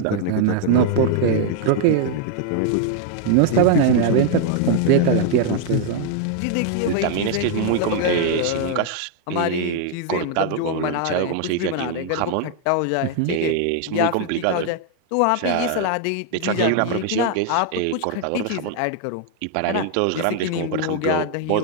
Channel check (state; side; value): different; both; correlation 0.00